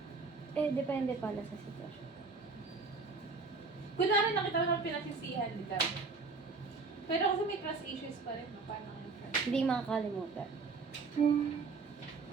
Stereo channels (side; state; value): left; quieter; 4.3 dB